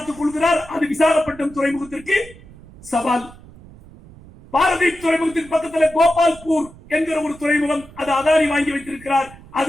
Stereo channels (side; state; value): right; noise; rumble, 21 dB below the sound